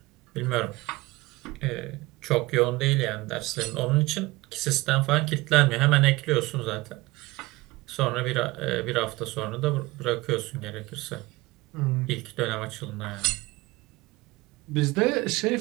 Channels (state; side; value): quieter; left; 20.9 dB